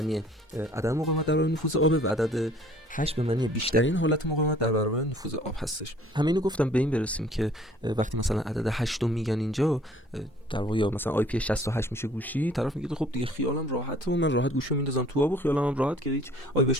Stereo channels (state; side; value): normal; both; correlation 0.55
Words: عدم مقاومت در برابر نفوذ آب و عدد 8 به معنی بیشترین حالت مقاومت در برابر نفوذ آب هستش. همینو گفتم به این برسیم که وقتی مثلا عدد 8 رو میگن اینجا در واقع یا مثلا IP 68 میشه گوشی، طرف میگه خب دیگه خیالم راحته و من راحت گوشیو میندازم تو آب و خیالم هم راحت که هیچ آبی